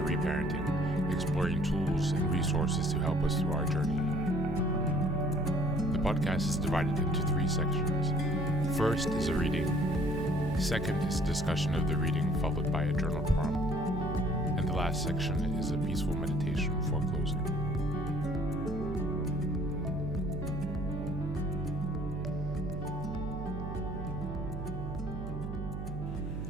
exploring tools and resources to help us through our journey. The podcast is divided into 3 sections. First is a reading. Second is a discussion of the reading followed by a journal prompt. And the last section is a peaceful meditation before closing.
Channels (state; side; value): noise; right; hum, 6 dB below the sound